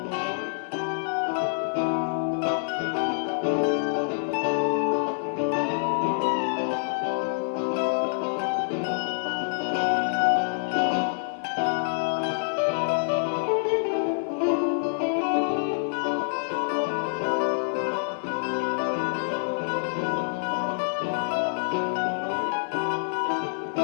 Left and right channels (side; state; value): right; silent; 60 dB below the other